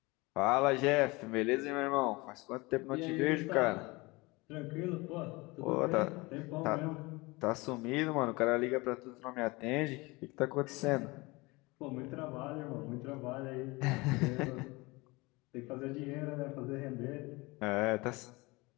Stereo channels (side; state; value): right; quieter; 23.9 dB